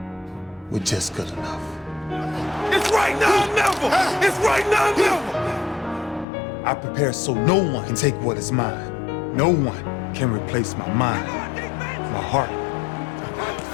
with just good enough. It's right now or never! It's right now or never! I prepare so no one can take what is mine. No one can replace my mind, my heart.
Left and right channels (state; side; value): drops out; right; at 6.2 s